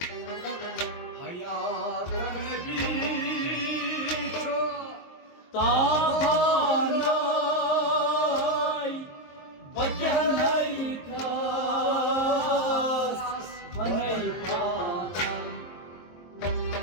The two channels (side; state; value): right; late; 23 ms